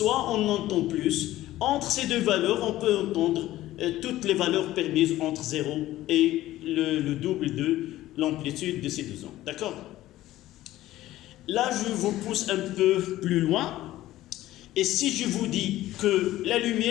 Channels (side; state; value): right; quieter; 15.2 dB